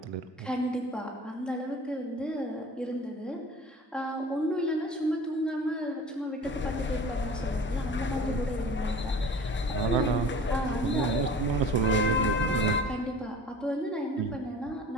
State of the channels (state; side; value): normal; both; correlation 0.42